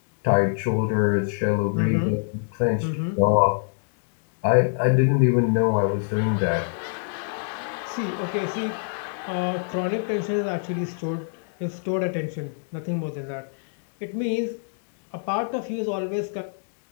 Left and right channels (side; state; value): right; silent; digital silence